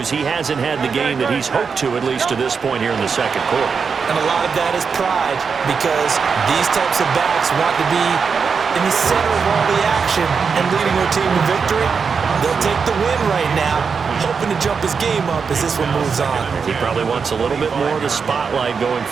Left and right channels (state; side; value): quieter; left; 5.7 dB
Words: he hasn't had the game that he's hoped to, at least to this point here in the 2nd quarter. And a lot of that is pride, because these types of backs want to be in the center of all the action and leading their team to victory. They'll take the win right now, hoping to jump his game up as this one moves on. He probably wants a little bit more of the spotlight going